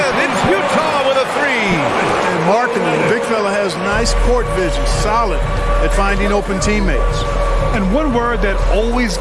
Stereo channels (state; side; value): identical; both; correlation 1.00